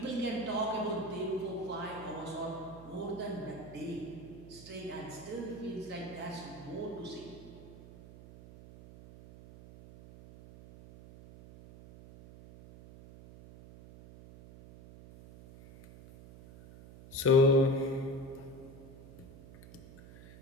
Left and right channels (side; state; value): right; noise; hum, 17 dB below the sound